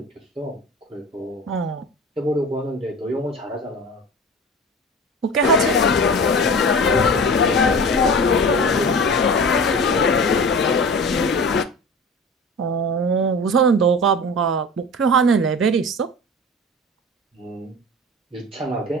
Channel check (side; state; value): both; normal; correlation 0.35